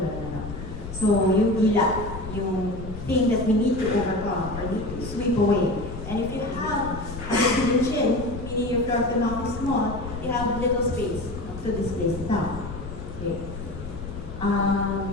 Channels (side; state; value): left; noise; rumble, 10 dB below the sound